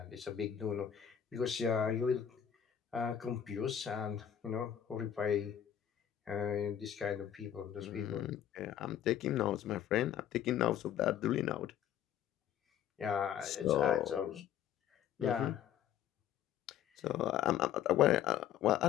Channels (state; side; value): quieter; right; 9.9 dB